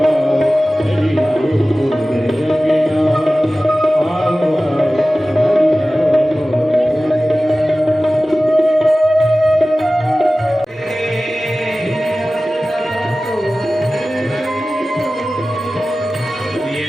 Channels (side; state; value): both; normal; correlation 0.96